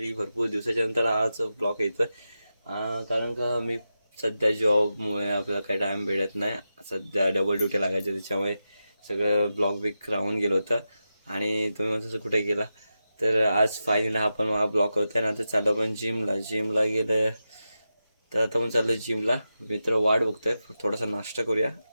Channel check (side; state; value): both; inverted; correlation -0.90